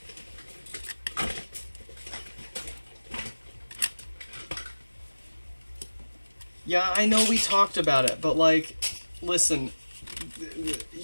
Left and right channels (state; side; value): inverted; both; correlation -1.00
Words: Yeah, I know we talked about it, but like, listen,